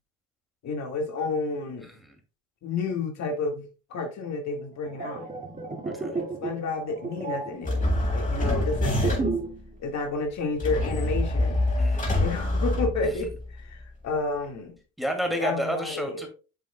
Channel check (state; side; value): normal; both; correlation 0.52